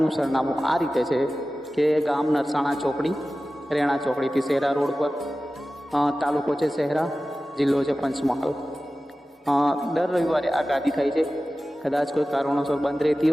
સરનામું આ રીતે છે કે ગામ નરસાણા ચોકડી, રેણા ચોકડીથી શહેરા રોડ પર, તાલુકો છે શહેરા, જિલ્લો છે પંચમહાલ. દર રવિવારે આ ગાદી થાય છે. કદાચ કોઈ કારણોસર બંધ રહેતી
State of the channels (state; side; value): normal; both; correlation 0.95